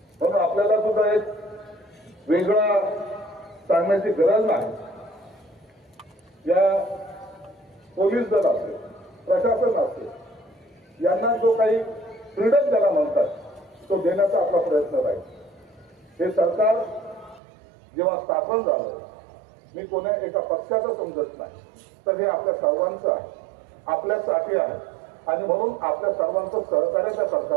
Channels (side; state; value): left; drops out; at 17.4 s